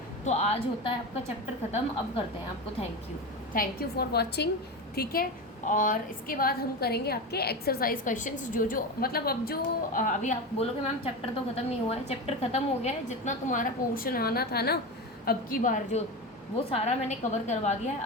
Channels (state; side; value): normal; both; correlation 0.22